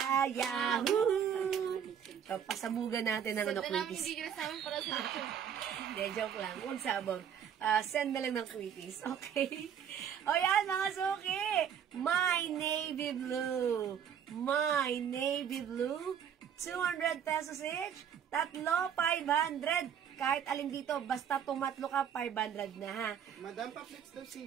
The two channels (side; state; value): left; quieter; 8.5 dB